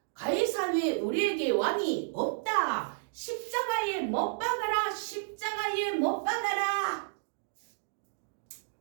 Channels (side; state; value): left; silent; digital silence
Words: 가이사 외에 우리에게 왕이 없다. 십자가에 못 박아라. 십자가에 못 박아라.